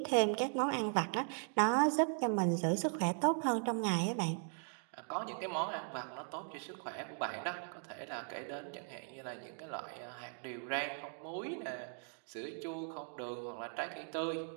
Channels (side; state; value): left; silent; 52 dB below the other